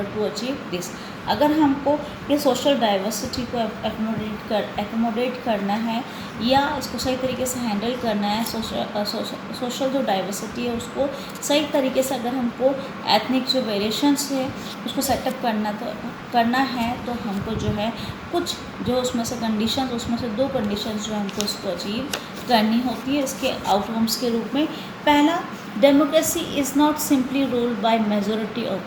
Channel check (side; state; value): both; identical; correlation 1.00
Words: to achieve this. अगर हमको ये सोशल डाइवर्सिटी को एकोमोडेट करना है या इसको सही तरीके से हैंडल करना है, सोशल जो डाइवर्सिटी है उसको सही तरीके से अगर हमको एथनिक जो वेरिएशंस है उसको सेटअप करना है तो हमको जो है कुछ जो उसमें से कंडीशंस, उसमें से 2 कंडीशंस जो हमको उसको अचीव करनी होती है इसके आउटकम्स के रूप में। पहला, democracy is not simply ruled by majority